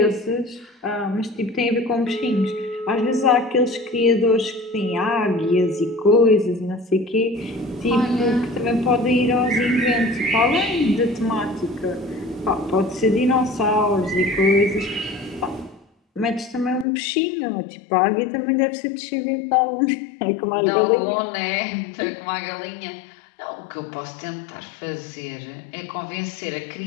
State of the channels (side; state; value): right; drops out; at 16.9 s